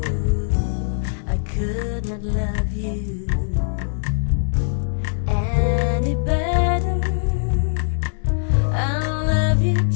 I could not love you any better. I love you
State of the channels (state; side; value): silent; right; digital silence